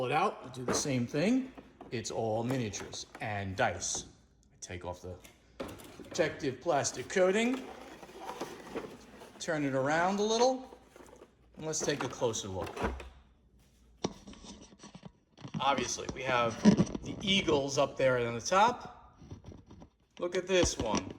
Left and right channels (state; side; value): identical; both; correlation 1.00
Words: it out and do the same thing. It's all miniatures and dice. I take off the protective plastic coating, turn it around a little, and let's take a closer look. Obviously, we have the eagles up there on the top. Look at this one.